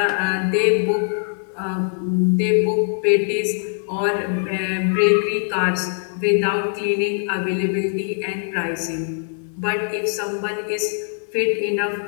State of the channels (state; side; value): silent; right; digital silence